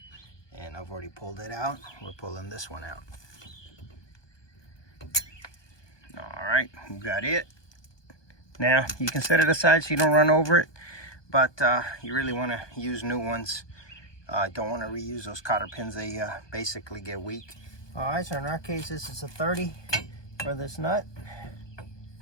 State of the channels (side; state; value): right; late; 1.2 ms